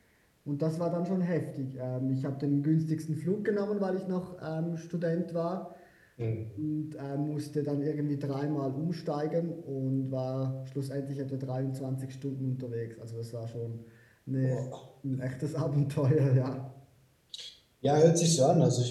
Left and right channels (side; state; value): both; identical; correlation 1.00